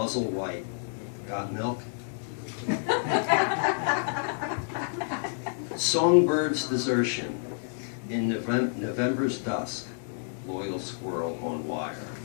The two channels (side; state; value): right; silent; 59 dB below the other